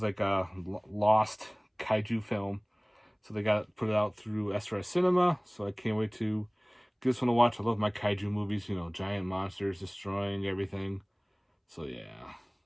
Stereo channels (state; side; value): identical; both; correlation 1.00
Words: like a lost kaiju film. So they put it out through SRS Cinema. So I can't wait to give this one a watch. I love my kaiju movies, you know, giant monsters destroying everything. So yeah.